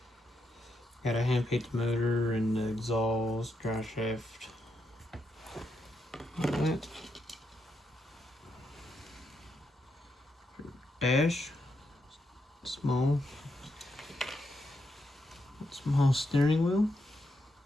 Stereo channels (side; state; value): both; normal; correlation 0.82